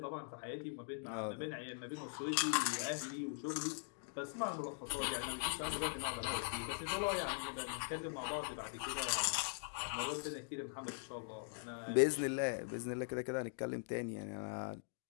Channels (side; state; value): right; silent; digital silence